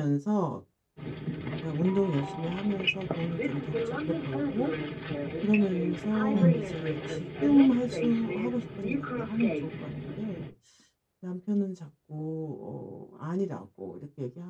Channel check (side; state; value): both; identical; correlation 1.00